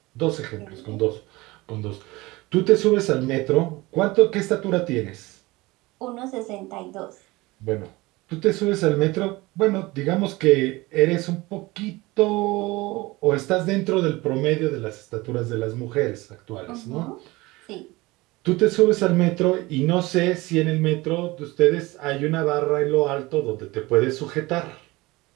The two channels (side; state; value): left; quieter; 21.3 dB